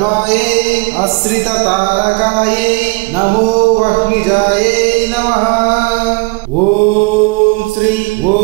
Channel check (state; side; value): quieter; left; 28.1 dB